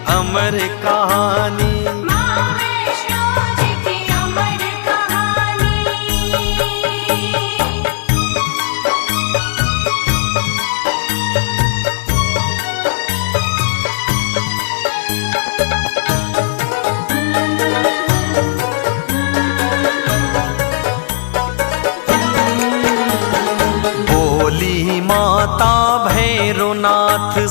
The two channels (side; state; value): right; silent; digital silence